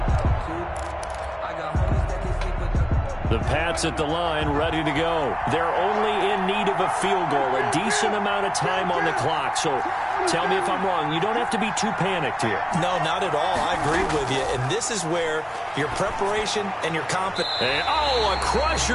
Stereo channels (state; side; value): identical; both; correlation 1.00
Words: The Pats at the line, ready to go. They're only in need of a field goal, a decent amount of time on the clock. So tell me if I'm wrong. You don't have to be too panicked here. No, not at all. I agree with you. And this is where your preparation and your confidence. And, oh, a